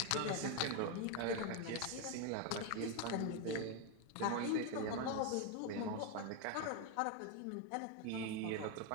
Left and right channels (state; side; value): different; both; correlation 0.02